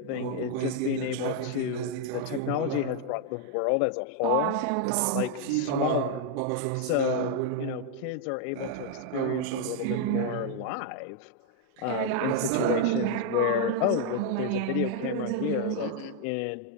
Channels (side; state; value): both; different; correlation 0.00